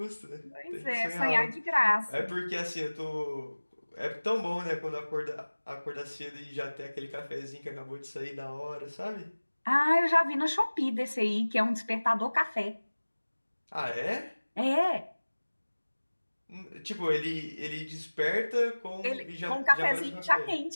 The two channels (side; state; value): both; inverted; correlation -1.00